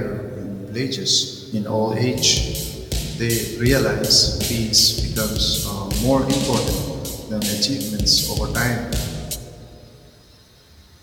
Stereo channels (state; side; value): identical; both; correlation 1.00